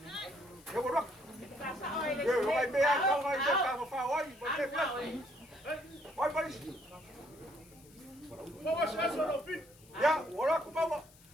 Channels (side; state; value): left; noise; hiss, 26 dB below the sound